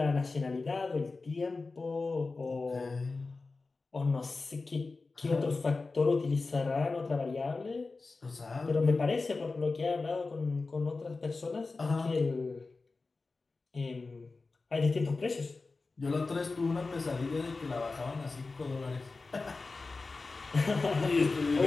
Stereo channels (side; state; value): right; quieter; 3.8 dB